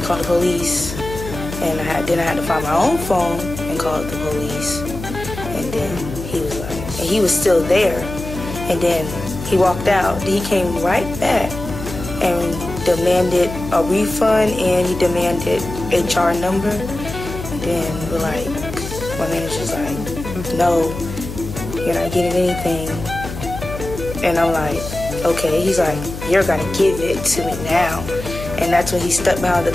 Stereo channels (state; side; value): noise; left; hum, 9 dB below the sound